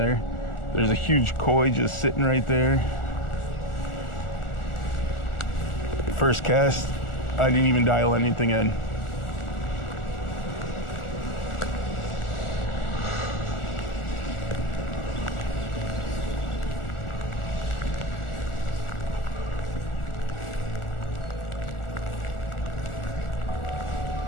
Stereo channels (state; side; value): late; right; 1.4 ms